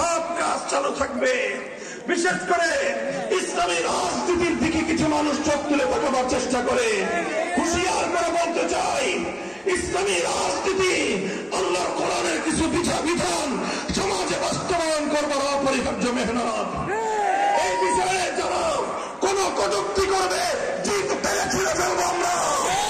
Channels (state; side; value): identical; both; correlation 1.00